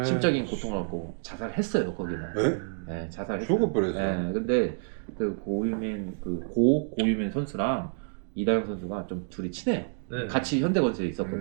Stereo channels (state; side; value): silent; left; digital silence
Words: 심적인 고통을 받고 자살했어요 거기는. 에? 네, 자살했어요. 죽어버렸어. 네, 근데 그 고유민 고유민 선수랑 이다영 선수가 좀 둘이 친해요. 네. 같이 현대건설에